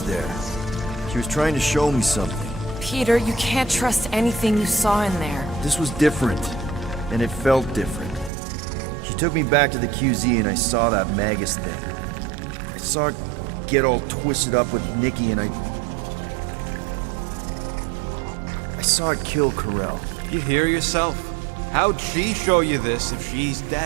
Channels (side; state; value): left; drops out; at 8.3 s